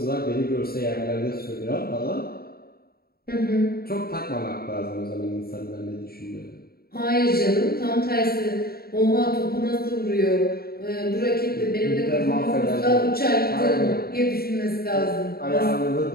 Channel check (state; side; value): late; right; 0.45 ms